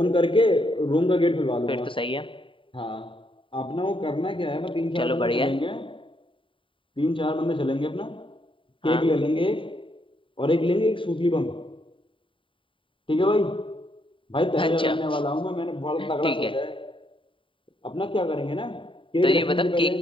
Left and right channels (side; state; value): right; late; 0.25 ms